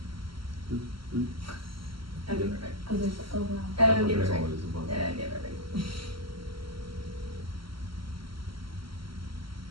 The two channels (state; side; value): late; left; 0.74 ms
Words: I'll give it right. Oh, there's, oh wow. I'll give it There's right. always a bunch. Yeah, I'll give it right.